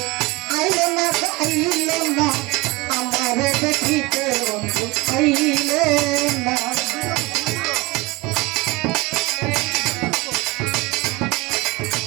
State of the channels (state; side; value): quieter; left; 22.8 dB